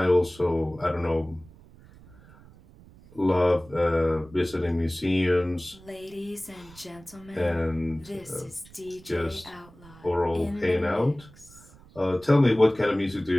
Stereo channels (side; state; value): right; noise; rumble, 23 dB below the sound